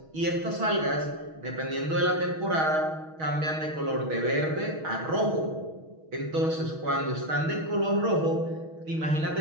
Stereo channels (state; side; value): late; left; 6.3 ms